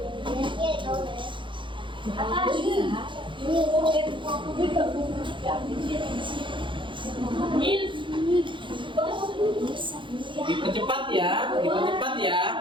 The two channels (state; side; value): late; left; 0.24 ms